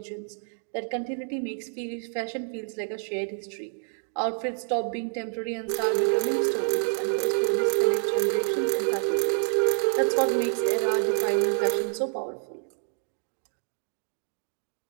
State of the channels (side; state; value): left; silent; digital silence